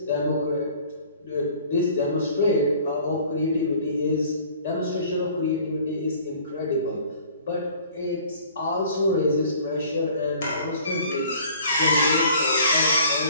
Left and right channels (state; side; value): inverted; both; correlation -0.51